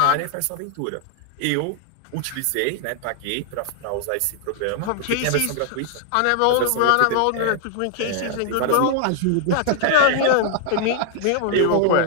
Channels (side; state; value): both; different; correlation 0.00